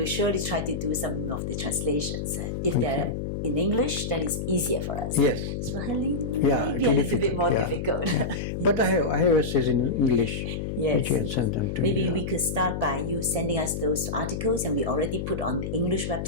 surely try to do some of the translations. If they're in English, then it's easier for us. Yes. Swahili Yeah, may be a little bit more difficult. Yeah. But I have essays in English, which you can send them to Maybe you. we could start by you sending us those articles, and we already put on the English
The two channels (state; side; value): noise; left; hum, 4 dB below the sound